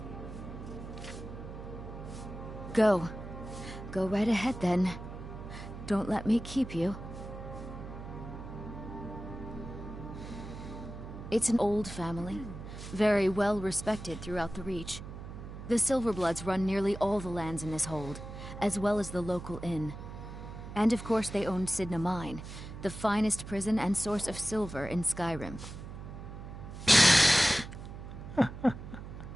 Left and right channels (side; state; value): right; noise; hum, 11 dB below the sound